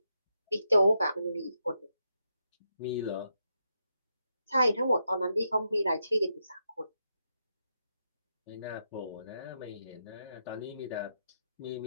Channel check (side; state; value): both; inverted; correlation -0.83